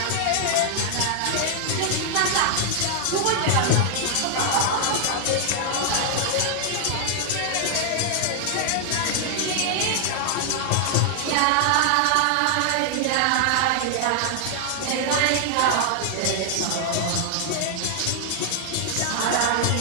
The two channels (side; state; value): both; different; correlation 0.00